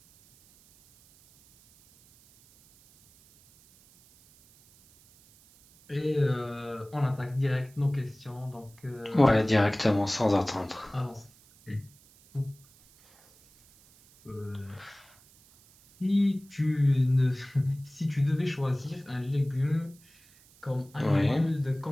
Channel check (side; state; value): right; noise; hiss, 28 dB below the sound